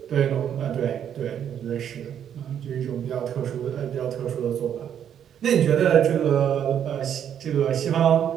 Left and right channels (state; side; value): quieter; left; 9.2 dB